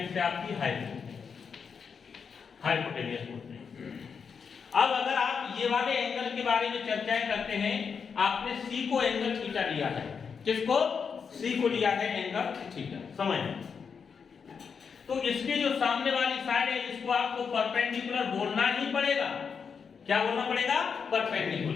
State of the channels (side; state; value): right; quieter; 6.2 dB